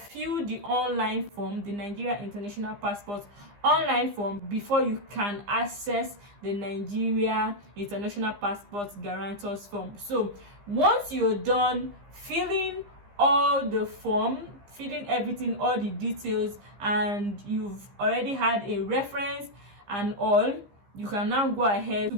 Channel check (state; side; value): late; left; 15 ms